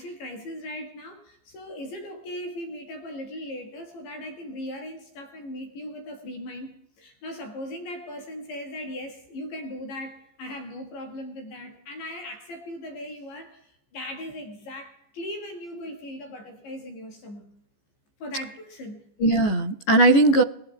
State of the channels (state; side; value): late; right; 15 ms